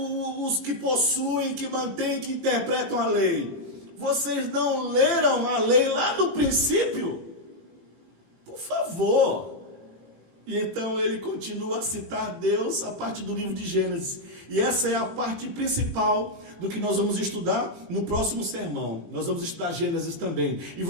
que possuem, que mantêm, que interpretam a lei, vocês não leram a lei lá no princípio? Por favor. E então ele continua a citar Deus a partir do livro de Gênesis. E essa é a parte principal do que nós vamos estudar no próximo sermão. Nós vamos estudar Gênesis também. E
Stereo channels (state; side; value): late; left; 18 ms